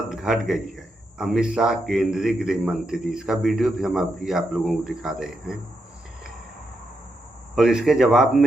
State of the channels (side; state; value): both; normal; correlation 0.83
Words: घट गई है। अमित शाह केंद्रीय गृह मंत्री, इसका वीडियो भी हम अभी आप लोगों को दिखा रहे हैं। और इसके जवाब